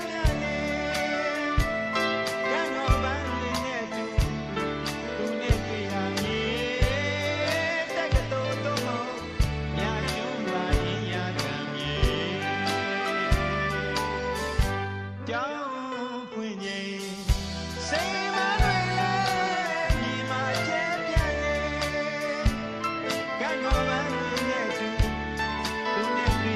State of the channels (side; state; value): both; identical; correlation 1.00